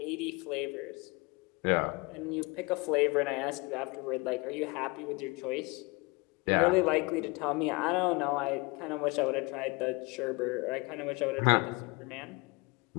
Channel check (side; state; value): right; quieter; 26.8 dB